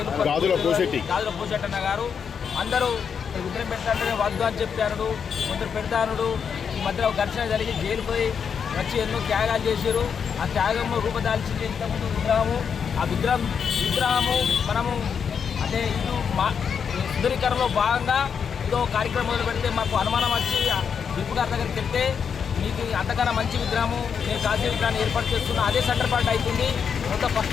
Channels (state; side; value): quieter; right; 6.9 dB